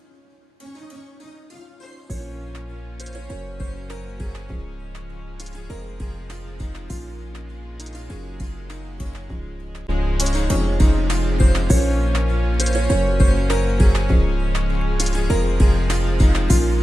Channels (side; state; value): both; normal; correlation 0.94